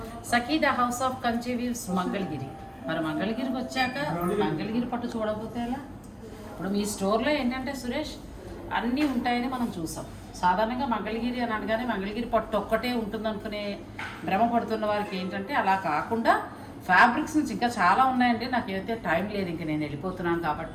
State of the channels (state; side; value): identical; both; correlation 1.00